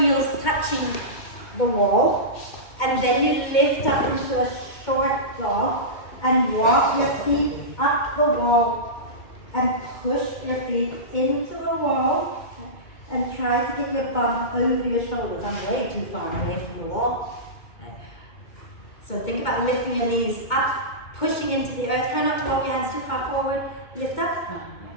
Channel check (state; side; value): late; right; 2.2 ms